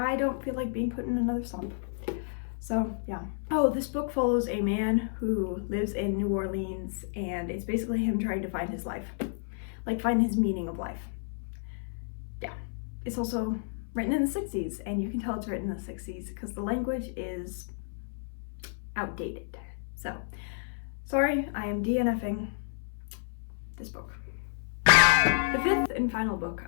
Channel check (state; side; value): silent; right; 56 dB below the other